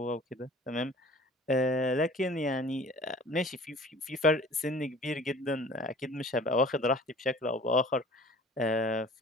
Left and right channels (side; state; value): both; normal; correlation 0.47